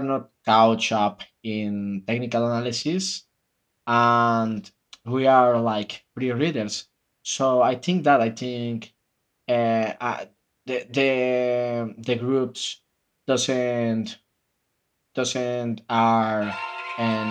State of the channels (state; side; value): identical; both; correlation 1.00